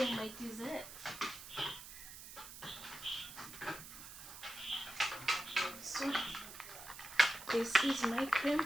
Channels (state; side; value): noise; right; hiss, 13 dB below the sound